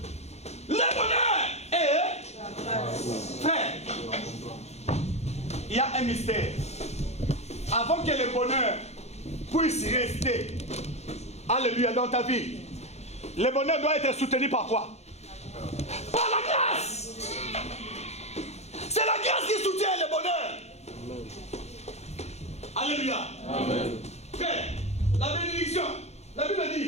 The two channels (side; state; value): right; late; 0.31 ms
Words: le bonheur est... Frère, il y a un mystère. Avant que le bonheur puisse rester, alléluia, dans ta vie, le bonheur doit être soutenu par quoi? Par la grâce. C'est la grâce qui soutient le bonheur. Alléluia. Amen. Frère, la bénédiction, la Bible